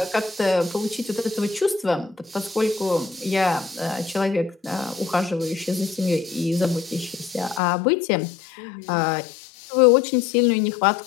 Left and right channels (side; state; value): right; drops out; at 7.6 s